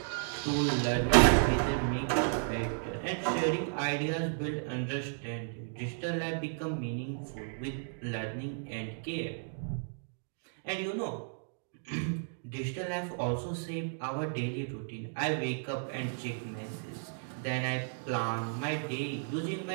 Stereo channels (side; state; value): left; silent; digital silence